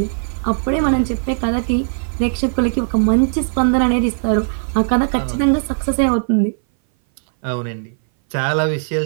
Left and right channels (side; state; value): left; silent; 60 dB below the other